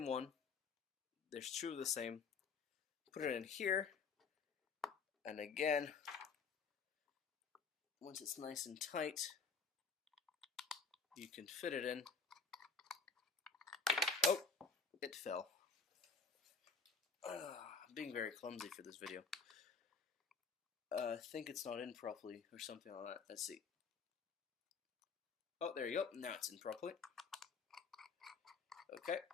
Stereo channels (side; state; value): right; quieter; 5.0 dB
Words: one. There's two of the same. Put it in here. And again, once it's nice and tight, you can fit it in. Oh, it fell. I'm being very clumsy for this video. I think it's not in properly or something like that. Let's see. Oh, there you go. Now it's in properly. Okay.